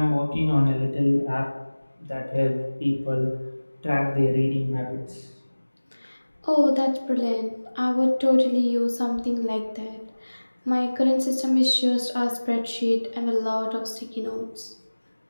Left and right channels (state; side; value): inverted; both; correlation -1.00